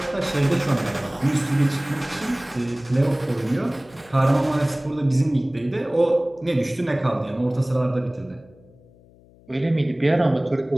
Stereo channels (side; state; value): left; noise; hum, 27 dB below the sound